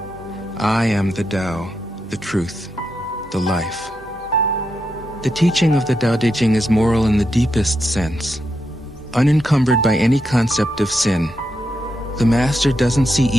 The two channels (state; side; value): normal; both; correlation 0.84